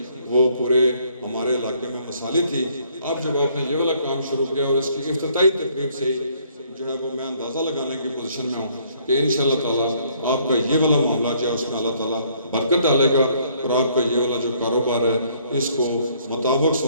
وہ پورے ہمارے علاقے میں مثالی تھی. اب جب آپ نے یہ والا کام شروع کیا اور اس کی افتتاحی تقریب سے ہی جو ہے وہ میں اندازہ لگانے کی پوزیشن میں ہوں کہ انشاءاللہ تعالیٰ آپ کا یہ والا معاملہ جو ہے اس میں اللہ تعالیٰ برکت ڈالے گا اور آپ کا یہ والا جو کاروبار ہے اس کو مطابق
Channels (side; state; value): both; inverted; correlation -0.65